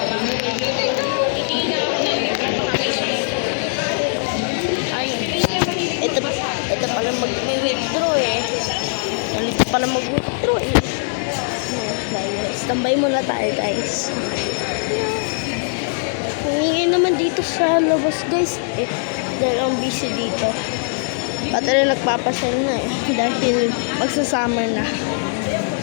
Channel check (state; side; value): silent; right; 65 dB below the other